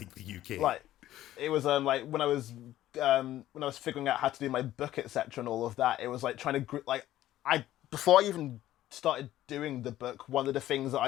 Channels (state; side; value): quieter; right; 13.8 dB